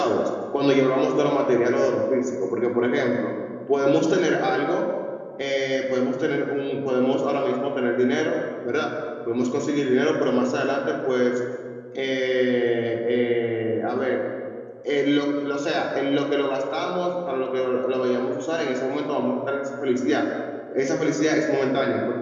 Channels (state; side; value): identical; both; correlation 1.00